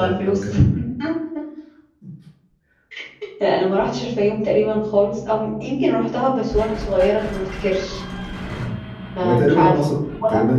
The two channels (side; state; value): both; identical; correlation 1.00